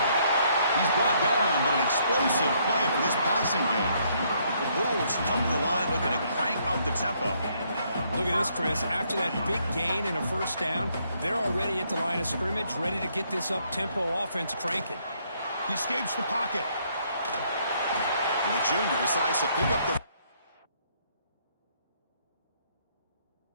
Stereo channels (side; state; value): both; inverted; correlation -0.70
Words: He's brought down, but an explosive play for this passing game. The Bulls come to the line looking to crank up the tempo. Look at this, Chris. After that big gain and a first down, they're already at the line of scrimmage, ready to get this up-tempo offense cranking. He escapes the pocket. And the junior decides to pick up the...